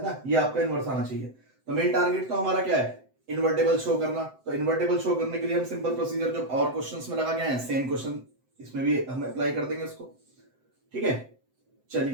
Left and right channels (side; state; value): left; late; 7.8 ms